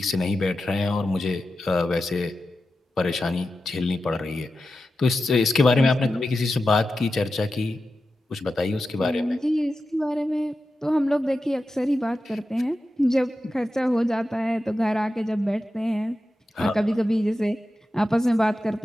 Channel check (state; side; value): normal; both; correlation 0.91